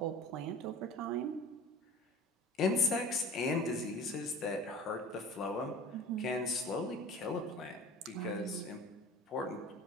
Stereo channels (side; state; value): both; normal; correlation 0.41